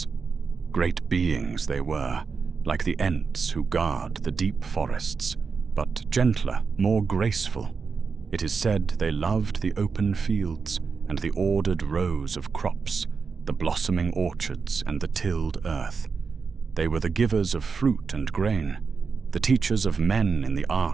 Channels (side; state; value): left; quieter; 5.2 dB